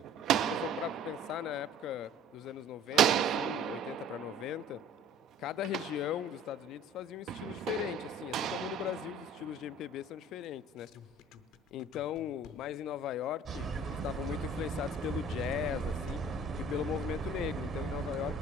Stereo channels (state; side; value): normal; both; correlation 0.49